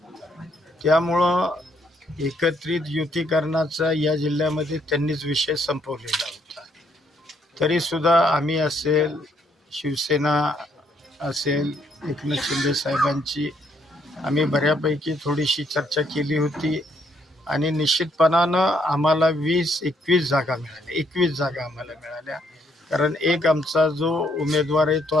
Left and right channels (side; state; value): both; normal; correlation 0.70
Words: त्यामुळं एकत्रित युतीकरणाचा या जिल्ह्यामध्ये त्यांनीच विषय संपवलेला होता. तरी सुद्धा आम्ही असेल, शिवसेना असेल, एकनाथ शिंदे साहेबांची आम्ही बऱ्यापैकी थोडीशी चर्चा केली होती आणि निश्चितपणानं आम्हाला 20-21 जागा मिळाल्या. 21 जागा आम्हाला मिळाल्या, कारण एक आमचा जो उमेदवार आहे तो